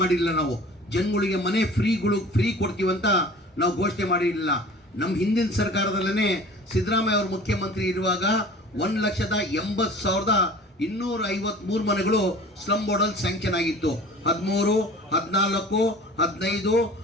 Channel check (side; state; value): both; normal; correlation 0.44